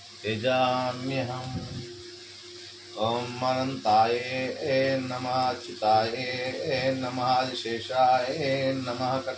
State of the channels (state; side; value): identical; both; correlation 1.00